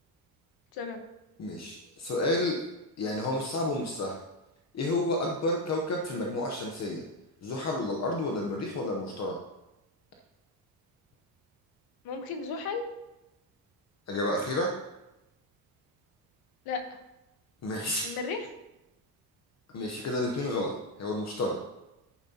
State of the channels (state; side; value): normal; both; correlation 0.06